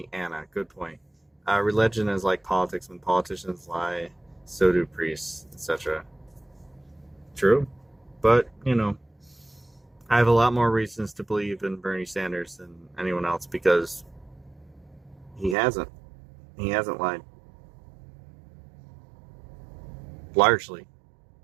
Anna. Good point. Religion is like politics. When politicians lie, so do priests, etc. True. But, I have a lot more reasons to believe in Bernie Sanders than anyone else because he hasn't. He hasn't lied. Largely.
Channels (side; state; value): left; drops out; at 15.6 s